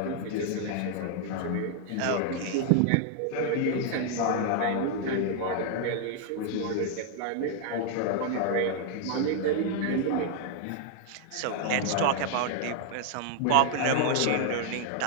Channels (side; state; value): both; different; correlation 0.00